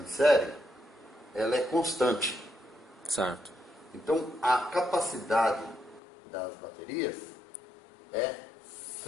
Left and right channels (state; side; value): drops out; right; at 6.0 s